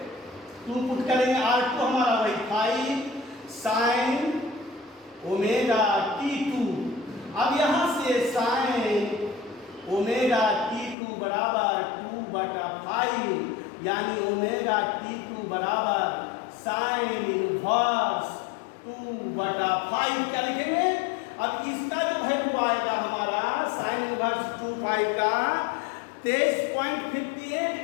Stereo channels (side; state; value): right; drops out; at 11.0 s